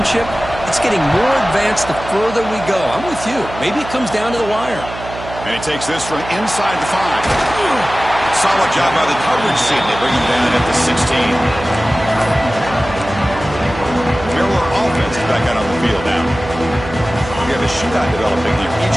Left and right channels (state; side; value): noise; right; hum, 12 dB below the sound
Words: it's getting more advanced the further we go. I'm with you. Maybe it comes down to the wire. And he takes this from inside the 5. Solid job by the coverage team. They bring him down at the 16. Back out on the field now. We have a shootout developing here.